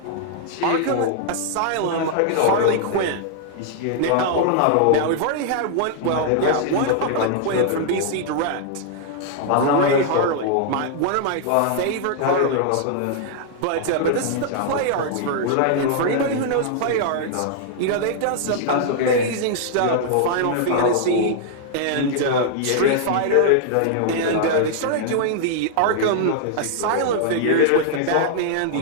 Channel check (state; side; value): different; both; correlation -0.01